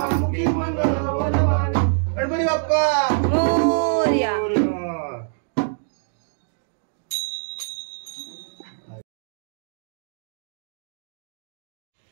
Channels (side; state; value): left; silent; digital silence